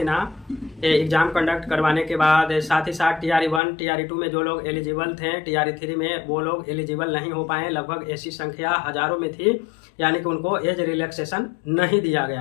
एग्जाम कंडक्ट करवाने के बाद। साथ ही साथ TRE 1 TRE 2 में जो लोग एलिजिबल थे, TRE 3 में वो लोग एलिजिबल नहीं हो पाए। लगभग ऐसी संख्या हजारों में थी, यानी कि उनको एज रिलैक्सेशन नहीं दिया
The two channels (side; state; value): right; drops out; at 3.6 s